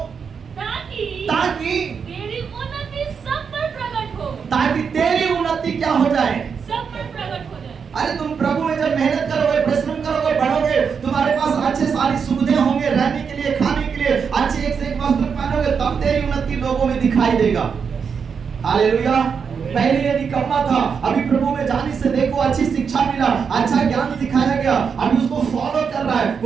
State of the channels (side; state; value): left; quieter; 6.3 dB